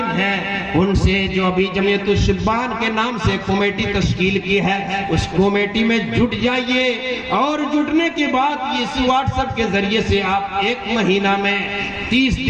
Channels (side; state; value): both; identical; correlation 1.00